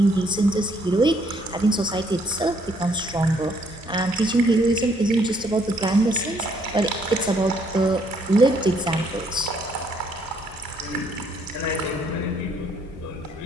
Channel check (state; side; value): normal; both; correlation 0.68